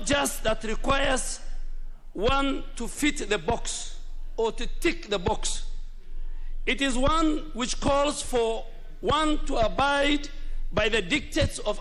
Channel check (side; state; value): both; identical; correlation 1.00